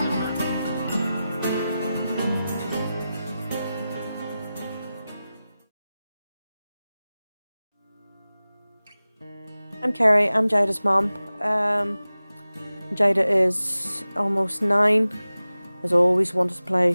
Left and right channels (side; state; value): both; inverted; correlation -0.95